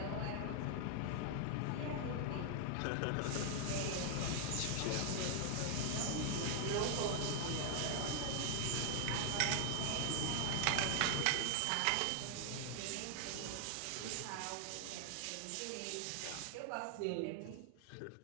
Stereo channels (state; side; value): different; both; correlation 0.00